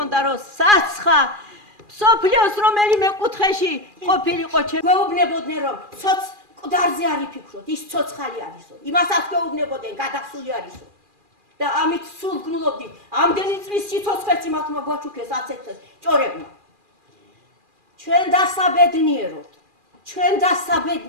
რომ საცხა მსოფლიოს რომელიმე კუთხეში ყოფილიყო ჩვენ გვეუბნებოდნენ რომ ცოც მკვდარზე არ იფიქროთ ის ცოცხალი არისო იმასაც გვეუბნებოდნენ გადახსული არისო და ამით სულ გნულობდით ამდენი წლის სიცოცხლეც იმათმა გვაჩუქეს აცეთეს ჭორებმა ჩვენ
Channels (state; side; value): late; left; 2.4 ms